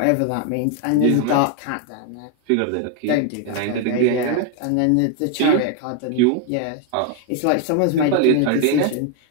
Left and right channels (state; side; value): different; both; correlation 0.01